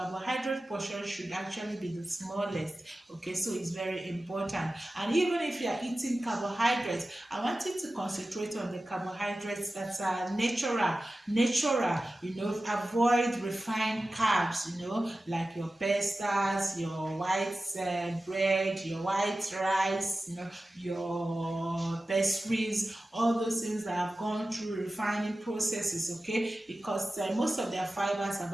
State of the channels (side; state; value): both; normal; correlation 0.95